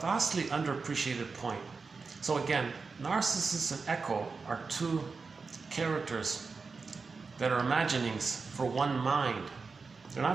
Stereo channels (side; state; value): left; quieter; 4.6 dB